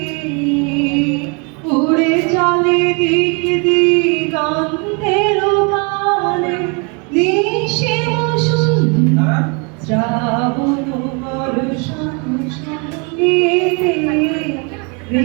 উড়ে চলে দিক দিগন্তের পানে নিশিম সুন্দর শ্রাবণ বর্ষণ সঙ্গী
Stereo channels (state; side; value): quieter; left; 33.6 dB